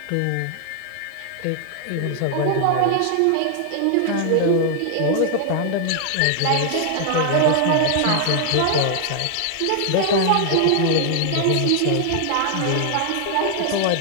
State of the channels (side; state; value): both; different; correlation 0.00